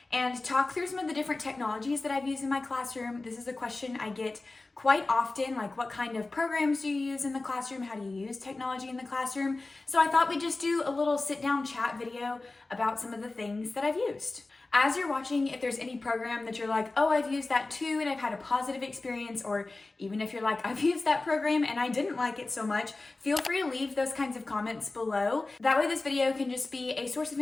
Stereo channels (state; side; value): quieter; right; 3.3 dB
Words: and talk through some of the different technologies that I've used in my classroom. This is a question I get quite often, like what kind of programs do you use in the classroom? How do you use technology in the classroom? So I thought we'd just do a little sit down chat video about some of the things that I've used. As you're watching, if there's any program that you're like, oh, I've used that too and I've had a positive experience, or even if you're like, I've used that program and I didn't like it so much, feel free to leave those kinds of comments below. That way this video can just be a source of